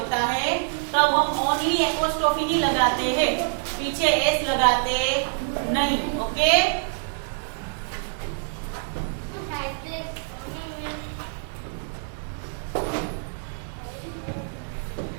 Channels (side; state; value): left; silent; 61 dB below the other